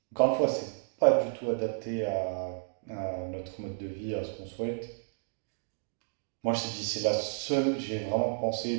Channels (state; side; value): silent; left; digital silence